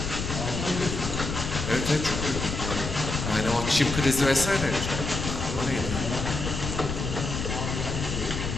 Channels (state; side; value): noise; left; rumble, 4 dB below the sound